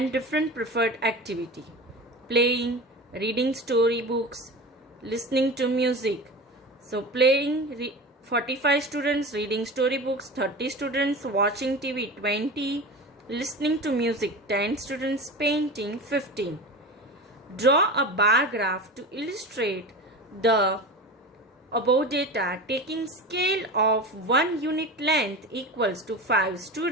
different preferred activity. Playing, reading storybooks, listening to music. So playing 45 students, reading storybooks 30 students, watching TV 20, listening to music 10 students, painting 15. Draw a bar graph to illustrate the above data taking scale of 1 unit length equals to 5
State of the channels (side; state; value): both; normal; correlation 0.30